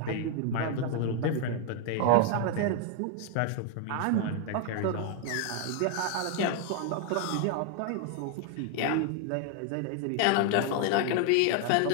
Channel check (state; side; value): different; both; correlation 0.00